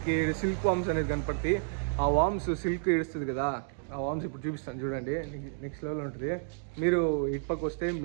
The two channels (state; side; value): silent; left; digital silence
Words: సిల్క్ వామ్స్ అనేది కనపడుతుంది. ఆ వామ్స్ సిల్క్ ఇడుస్తుంది కదా, ఆ వామ్స్ ఇప్పుడు చూపిస్తాను చూడండి. నెక్స్ట్ లెవెల్ ఉంటుంది. మీరు ఇటు పక్క వస్తే